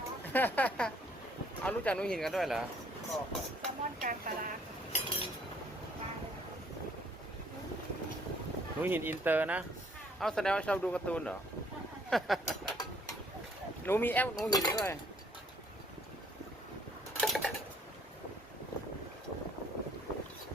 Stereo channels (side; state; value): both; normal; correlation 0.62